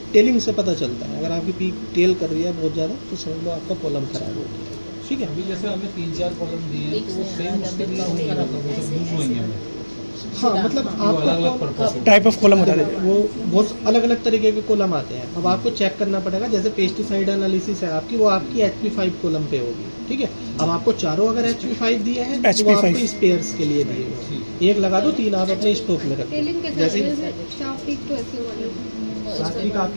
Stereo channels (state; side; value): inverted; both; correlation -1.00